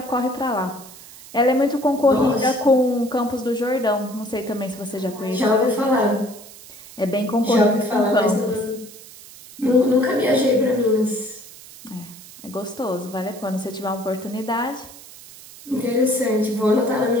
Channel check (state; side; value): noise; right; hiss, 18 dB below the sound